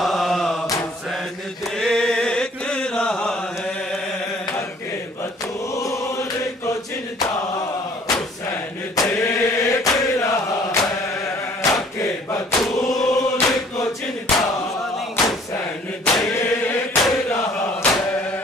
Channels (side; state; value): both; normal; correlation 0.55